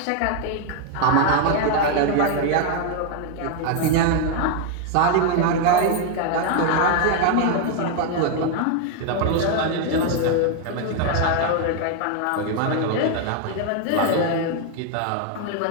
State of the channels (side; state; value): both; different; correlation 0.00